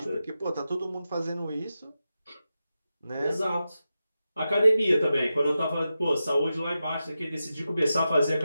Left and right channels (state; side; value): inverted; both; correlation -0.91